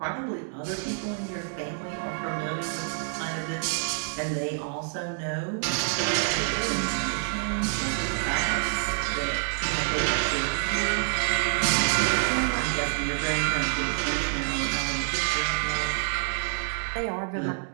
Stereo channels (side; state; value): left; silent; digital silence